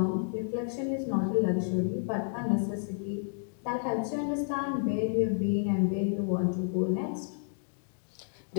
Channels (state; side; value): silent; right; digital silence